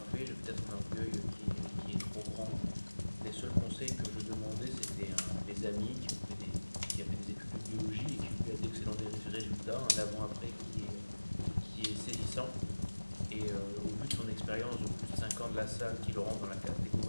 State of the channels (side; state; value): both; inverted; correlation -1.00